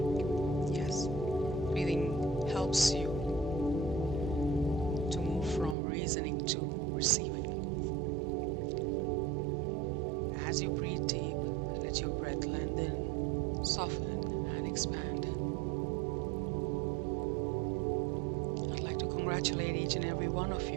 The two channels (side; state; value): left; drops out; at 5.8 s